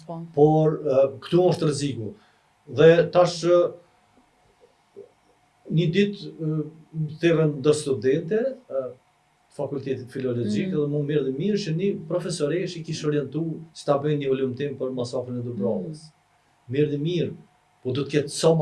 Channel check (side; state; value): both; identical; correlation 1.00